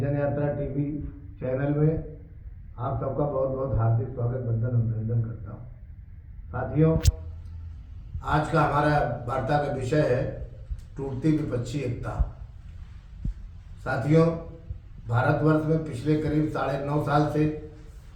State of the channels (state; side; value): identical; both; correlation 1.00